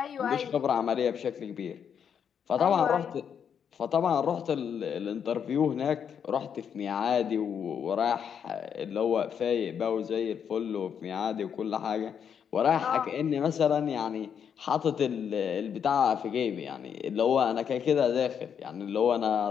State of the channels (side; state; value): right; quieter; 7.7 dB